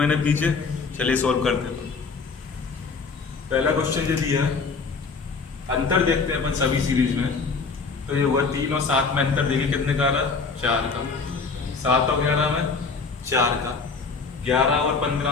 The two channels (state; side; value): quieter; right; 4.7 dB